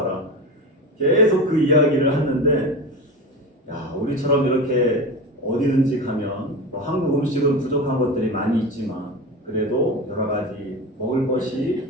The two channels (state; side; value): normal; both; correlation 0.26